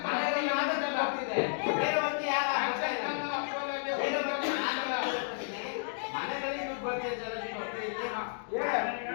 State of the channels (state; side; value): silent; right; digital silence